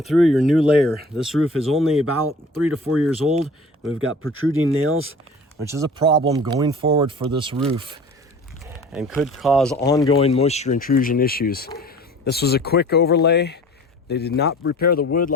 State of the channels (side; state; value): both; normal; correlation 0.44